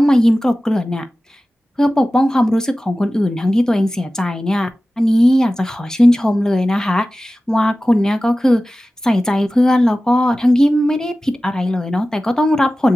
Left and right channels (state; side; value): normal; both; correlation 0.96